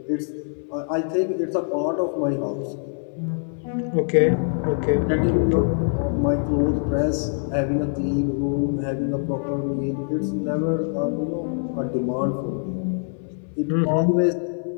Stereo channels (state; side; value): silent; right; 63 dB below the other